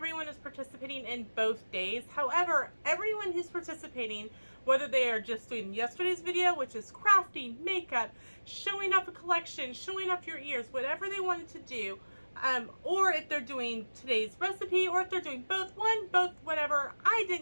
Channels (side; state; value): both; inverted; correlation -1.00